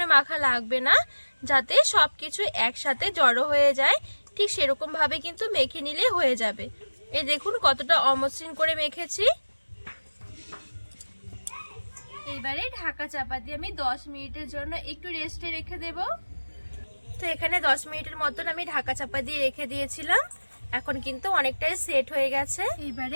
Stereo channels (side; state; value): both; inverted; correlation -1.00